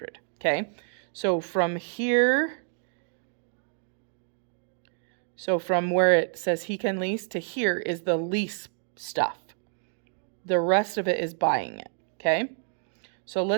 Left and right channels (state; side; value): silent; left; 59 dB below the other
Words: Okay, so from here, so from where it says he can lease to here is the lease stuff. The rest of it is buying it. Okay, so